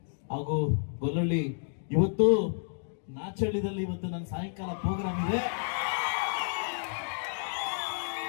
ಹಾಗೂ ಗೊಲ್ಲಳ್ಳಿ, ಇವತ್ತು ನಾಚಳ್ಳಿದಲ್ಲಿ ಇವತ್ತು ನನ್ನ ಸಾಯಂಕಾಲ ಪ್ರೋಗ್ರಾಮ್ ಇದೆ.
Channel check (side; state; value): right; silent; digital silence